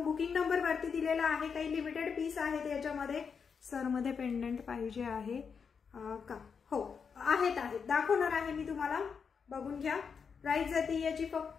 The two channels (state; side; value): quieter; right; 6.1 dB